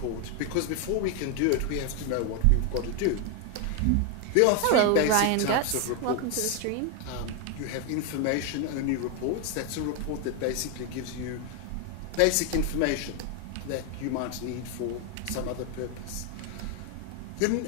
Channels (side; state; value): both; different; correlation 0.01